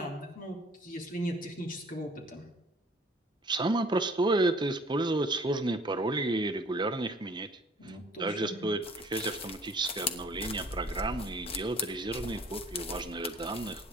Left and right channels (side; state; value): both; normal; correlation 0.53